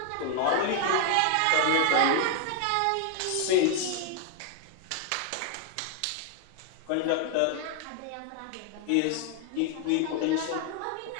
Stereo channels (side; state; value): both; different; correlation 0.00